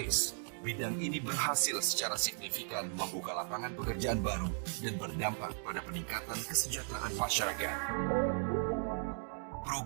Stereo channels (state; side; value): silent; left; 53 dB below the other